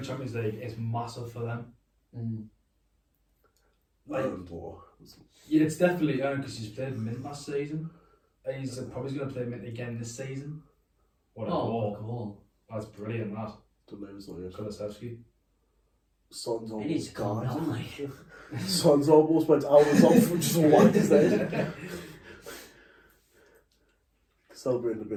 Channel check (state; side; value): identical; both; correlation 1.00